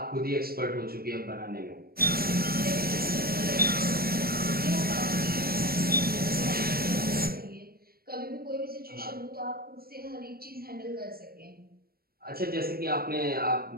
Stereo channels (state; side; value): late; left; 0.44 ms